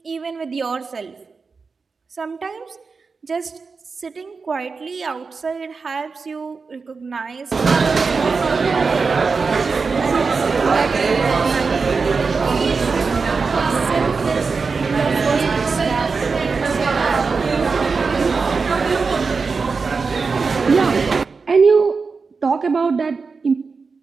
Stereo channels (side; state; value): left; quieter; 4.7 dB